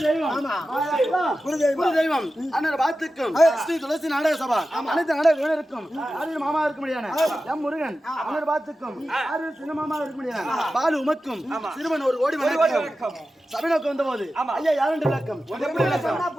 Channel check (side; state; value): both; normal; correlation 0.93